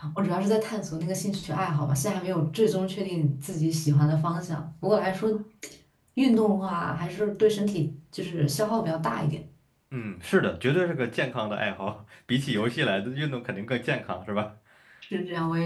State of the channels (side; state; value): both; identical; correlation 1.00